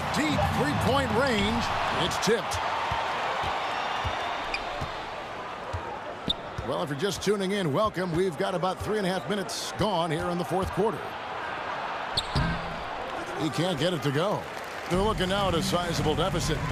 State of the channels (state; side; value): identical; both; correlation 1.00